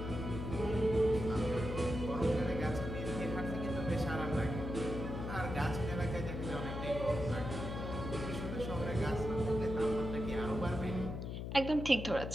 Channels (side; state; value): left; noise; hum, 5 dB below the sound